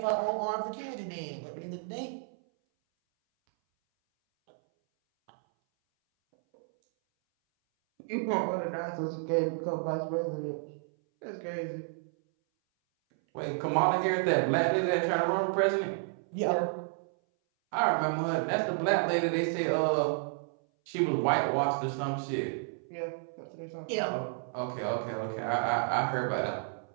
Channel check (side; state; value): left; silent; 57 dB below the other